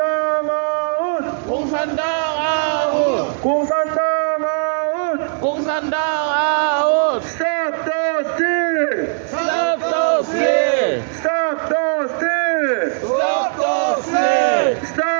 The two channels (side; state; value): left; silent; digital silence